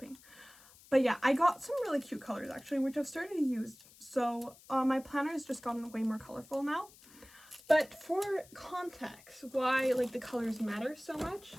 But yeah, I got some really cute colors actually, which I've started to use. So my planner has just gotten way more colorful now. But for context, why like the colors matter so much,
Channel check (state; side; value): noise; left; hiss, 23 dB below the sound